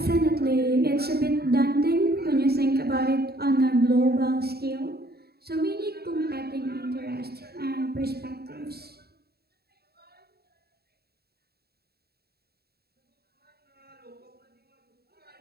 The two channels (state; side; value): late; left; 0.46 ms